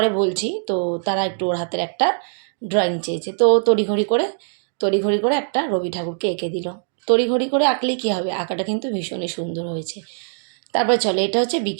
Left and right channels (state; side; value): silent; left; digital silence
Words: বলছি। তো তারা একটু ওর হাতের একটা ড্রয়িং চেয়েছে, তো তড়িঘড়ি করে একটা রবি ঠাকুরকে এঁকে দিল। তড়িঘড়ি করে আঁকলে কী হবে, আঁকাটা কিন্তু ভীষণই সুন্দর হয়েছে। তারপর চলো, এটা হচ্ছে